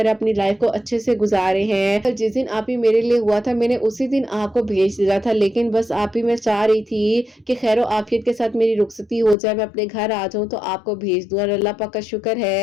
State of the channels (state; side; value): drops out; right; at 9.3 s